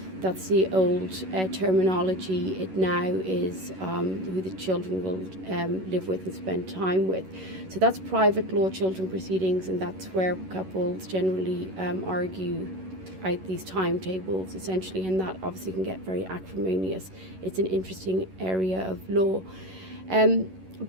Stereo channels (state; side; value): late; left; 11 ms